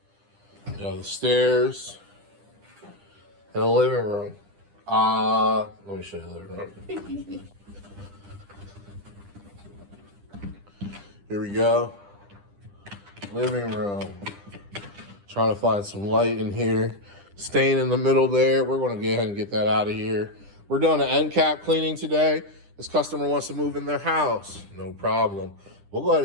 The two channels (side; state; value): left; late; 10 ms